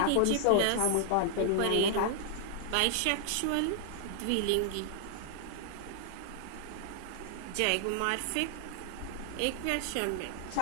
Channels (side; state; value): both; different; correlation 0.00